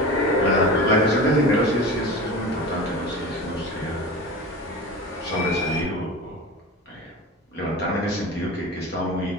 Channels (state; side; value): normal; both; correlation 0.32